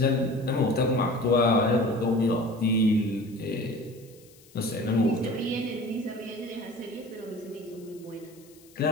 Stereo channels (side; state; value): left; noise; hiss, 26 dB below the sound